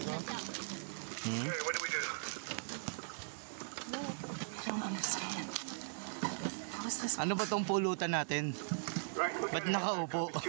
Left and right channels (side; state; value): left; silent; digital silence